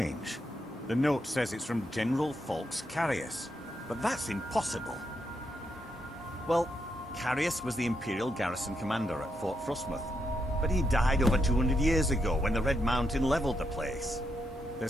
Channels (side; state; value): both; normal; correlation 0.81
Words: The note says it's from General Falks Carius, but that's impossible. Well, Carius was the Imperial garrison commander at Fort Frostmoth, but he died over 200 years ago when the Red Mountain leveled the place.